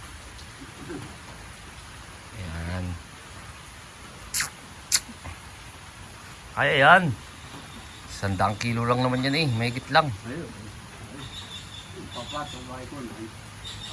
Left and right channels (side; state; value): both; identical; correlation 1.00